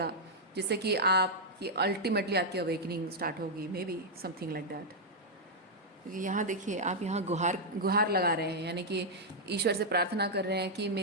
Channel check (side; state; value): both; normal; correlation -0.04